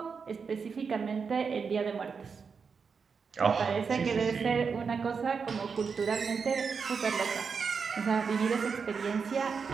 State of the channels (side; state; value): left; quieter; 5.6 dB